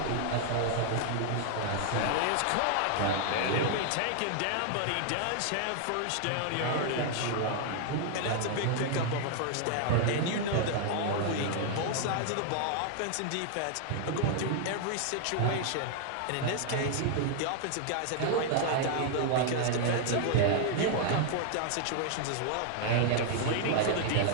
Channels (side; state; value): both; different; correlation 0.00